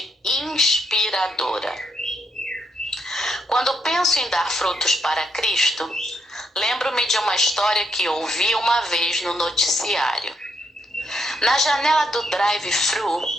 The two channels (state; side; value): normal; both; correlation 0.76